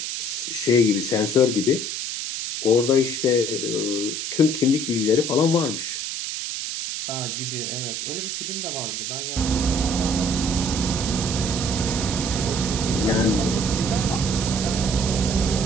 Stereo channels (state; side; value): noise; right; hiss, 4 dB below the sound